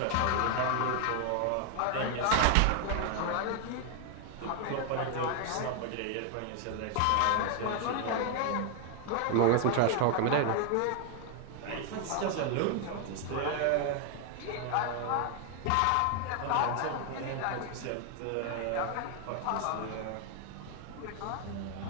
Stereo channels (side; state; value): both; different; correlation 0.00